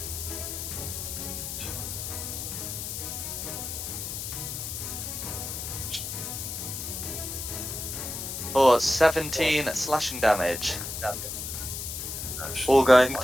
For 17 slashing damage. That's All going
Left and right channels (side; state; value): left; noise; hiss, 5 dB below the sound